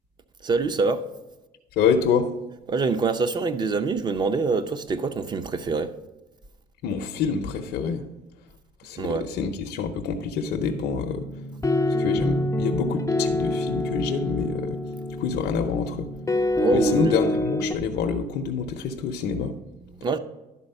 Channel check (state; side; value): normal; both; correlation 0.53